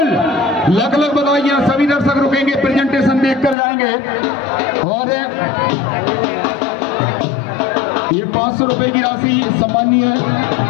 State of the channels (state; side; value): drops out; right; at 3.6 s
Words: लख लख बधाइयाँ। सभी दर्शक रुकेंगे, प्रेजेंटेशन देखकर जाएंगे। और ये 500 रुपए की राशि सम्मानीय